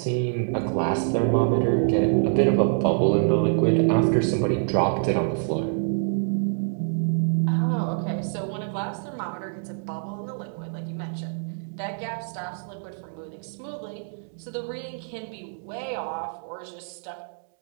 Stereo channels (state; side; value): silent; left; digital silence